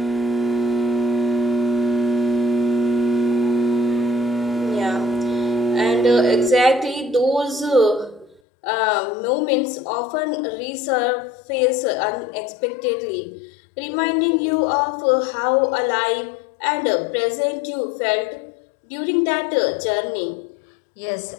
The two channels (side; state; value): right; drops out; at 8.4 s